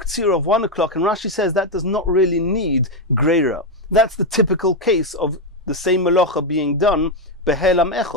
of 1 o'clock, and Rashi says that does not really need Greira. That's the typical case of the same melacha being done behelam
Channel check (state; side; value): normal; both; correlation 0.05